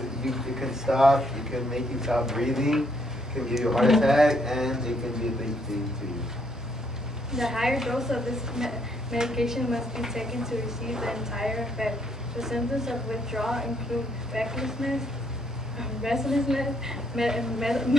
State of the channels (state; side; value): normal; both; correlation 0.71